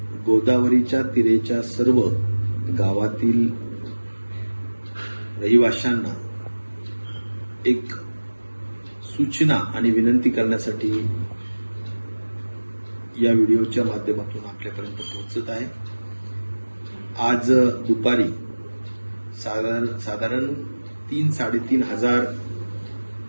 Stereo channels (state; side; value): inverted; both; correlation -1.00